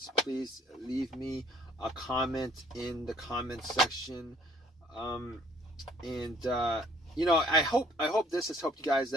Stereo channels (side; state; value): both; normal; correlation 0.59